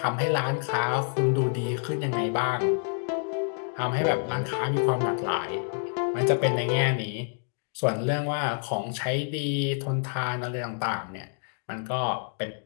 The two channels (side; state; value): right; silent; 58 dB below the other